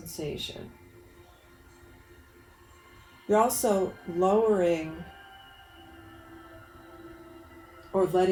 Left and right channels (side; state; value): both; identical; correlation 1.00